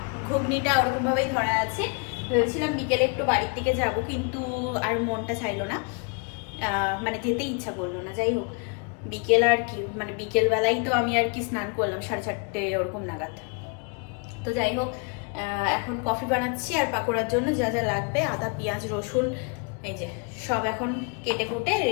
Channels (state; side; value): quieter; right; 34.9 dB